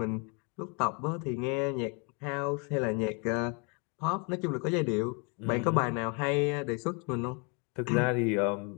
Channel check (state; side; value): quieter; right; 34.2 dB